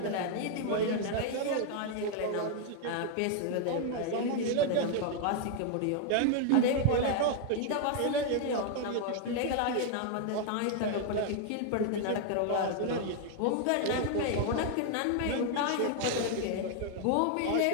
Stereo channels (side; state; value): both; different; correlation 0.00